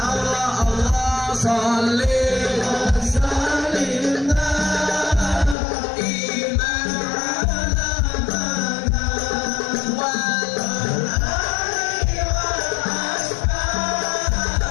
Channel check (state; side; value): drops out; right; at 5.6 s